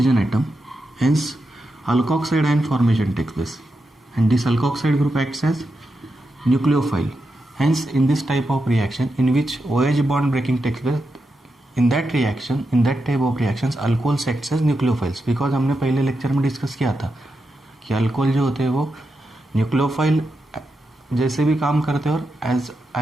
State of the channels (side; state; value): both; normal; correlation 0.87